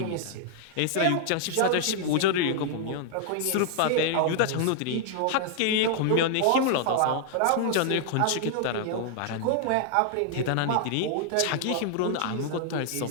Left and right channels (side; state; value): both; different; correlation 0.00